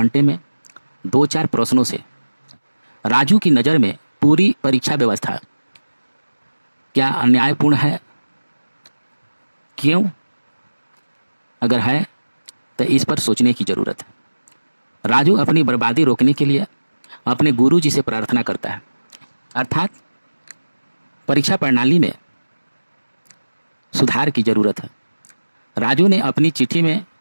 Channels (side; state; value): both; inverted; correlation -1.00